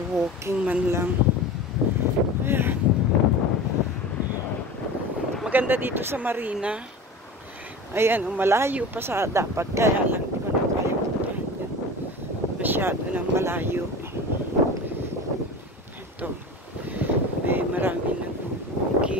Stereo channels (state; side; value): normal; both; correlation 0.33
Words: walking man lang. Ayan. Maganda dito sa Marina. Ayan, malayo pa sa dapat, kaya lang di ko na kaya puntahan yan. Masyado ng malayo. Ito, may marami